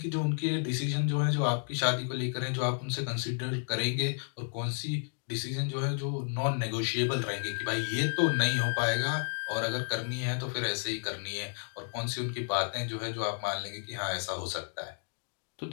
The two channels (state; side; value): silent; right; 56 dB below the other